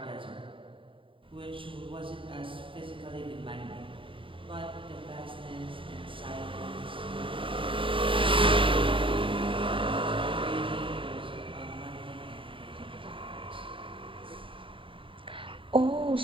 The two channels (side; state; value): left; late; 0.25 ms